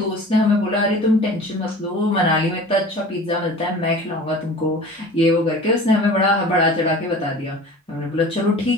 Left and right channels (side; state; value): both; normal; correlation 0.41